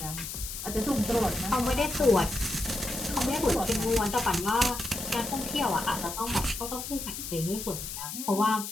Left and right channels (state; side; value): noise; left; hiss, 7 dB below the sound